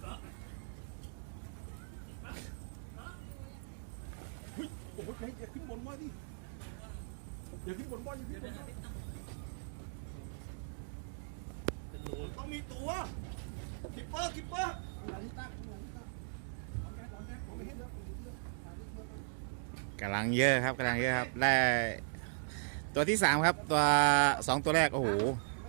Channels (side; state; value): left; silent; digital silence